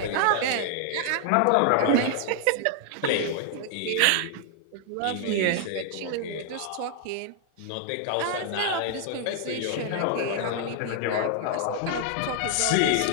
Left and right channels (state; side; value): different; both; correlation 0.00